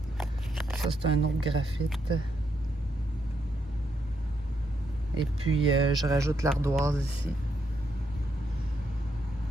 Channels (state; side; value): normal; both; correlation 0.79